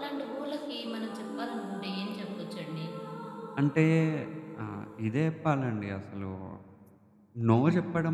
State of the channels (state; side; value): identical; both; correlation 1.00